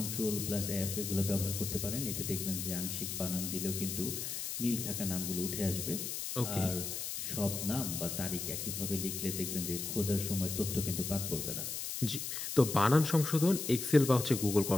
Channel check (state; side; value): noise; left; hiss, 4 dB below the sound